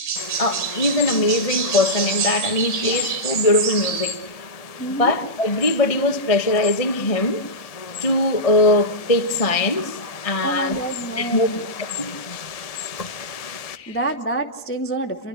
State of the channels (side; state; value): right; late; 1.7 ms